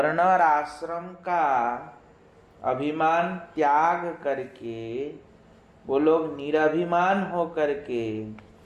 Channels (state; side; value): identical; both; correlation 1.00